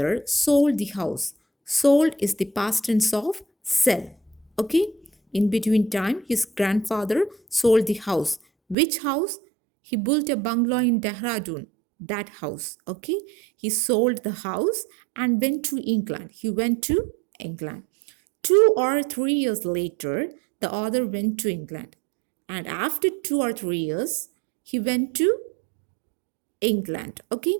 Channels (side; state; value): left; drops out; at 8.8 s